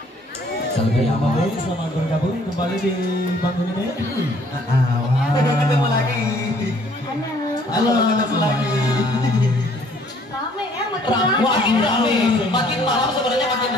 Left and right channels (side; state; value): both; normal; correlation 0.60